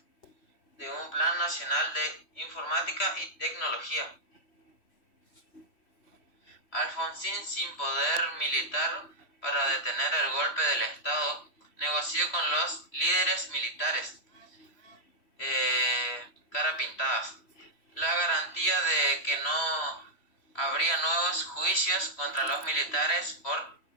de un Plan Nacional de Informática y Tecnología. Alfonsín, sin poder militar para detener el golpe del Estado, negoció con los líderes militares cara pintadas la garantía de que no habría nuevos juicios contra los militares por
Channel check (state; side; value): late; right; 3.1 ms